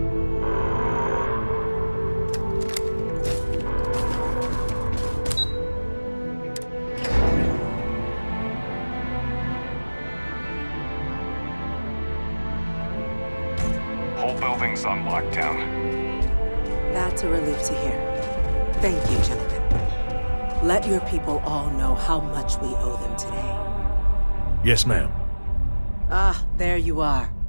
everything's on lockdown. That's a relief to hear. Thank you, gentlemen. Let your people all know how much we owe them today. Yes, ma'am. Ah, there you are.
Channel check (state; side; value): inverted; both; correlation -1.00